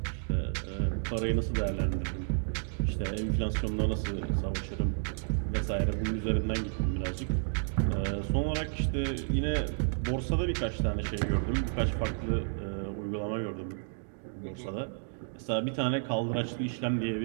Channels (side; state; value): left; silent; digital silence